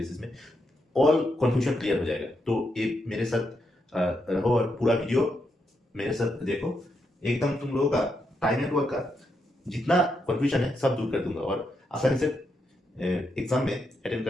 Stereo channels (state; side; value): normal; both; correlation 0.81